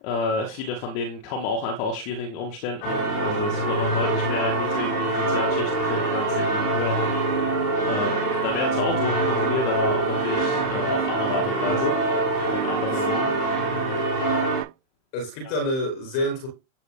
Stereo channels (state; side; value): late; right; 38 ms